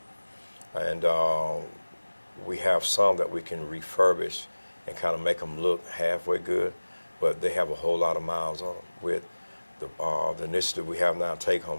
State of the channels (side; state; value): both; inverted; correlation -1.00